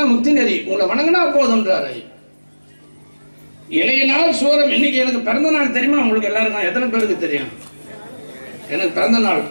முக்தி நெறி, உங்களை வணங்கினா போதும்ன்றாரு. இளைய நாள் சூரம். இன்னைக்கு எனக்கு பிறந்த நாள் தெரியுமா உங்களுக்கு எல்லாருக்கும்? எத்தனை பேருக்கு தெரியும்? எனக்கு பிறந்த நாள்,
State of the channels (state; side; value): inverted; both; correlation -1.00